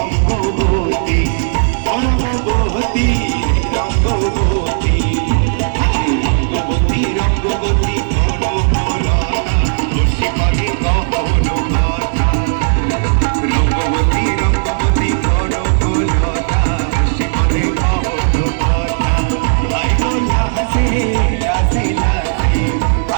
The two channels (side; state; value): left; silent; digital silence